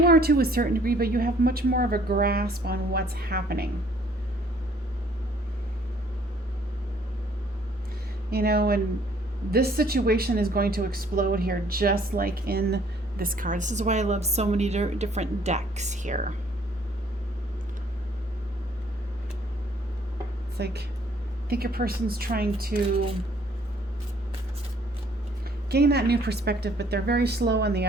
are to a certain degree, but you have much more of a grasp on what's happening. And this situation is going to explode here, just like in this card. This is why I love so many different decks here. It's I think your person's trying to gain that new perspective, but they're very slow on the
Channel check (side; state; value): both; normal; correlation 0.60